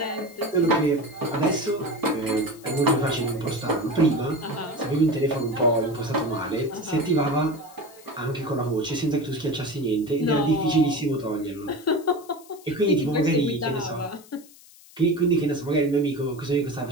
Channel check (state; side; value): noise; left; hiss, 23 dB below the sound